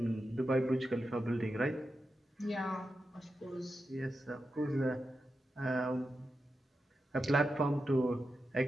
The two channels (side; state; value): both; normal; correlation 0.89